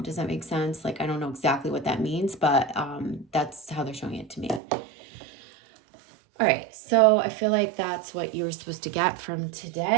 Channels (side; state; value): left; drops out; at 4.6 s